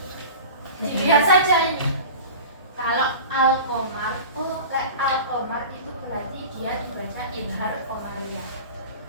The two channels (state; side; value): inverted; both; correlation -0.36